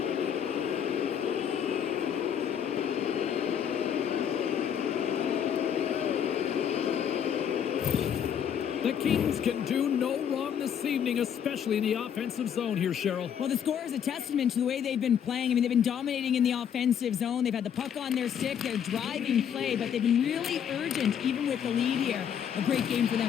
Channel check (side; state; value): right; quieter; 8.6 dB